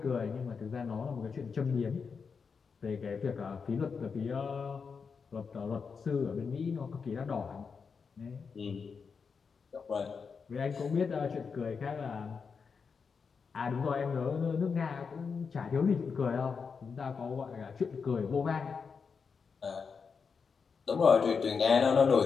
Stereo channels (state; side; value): quieter; right; 5.6 dB